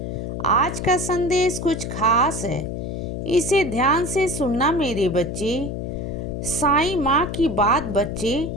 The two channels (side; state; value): left; noise; hum, 5 dB below the sound